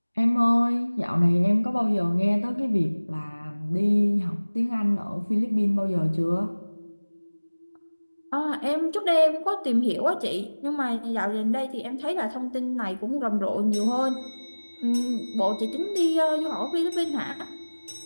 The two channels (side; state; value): both; inverted; correlation -1.00